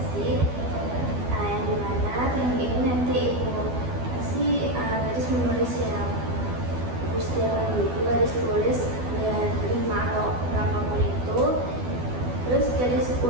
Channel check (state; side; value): late; left; 12 ms